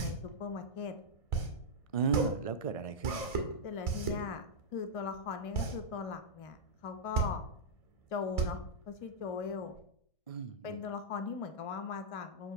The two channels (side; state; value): right; late; 1.6 ms